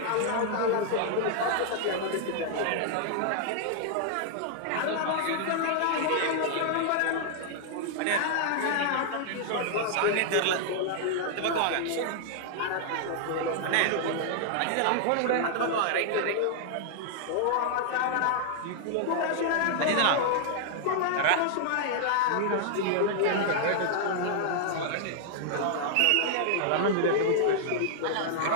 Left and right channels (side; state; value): both; different; correlation -0.01